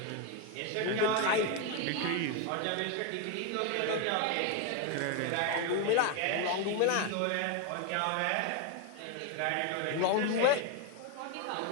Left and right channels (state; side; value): different; both; correlation 0.01